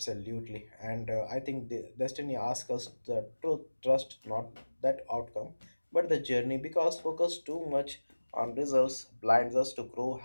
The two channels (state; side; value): inverted; both; correlation -1.00